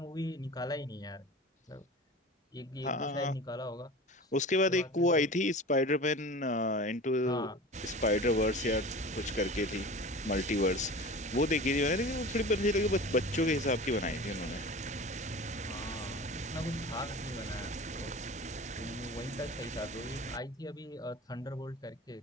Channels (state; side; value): normal; both; correlation 0.36